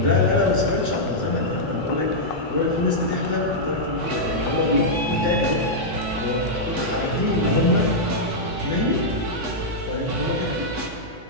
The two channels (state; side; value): normal; both; correlation -0.07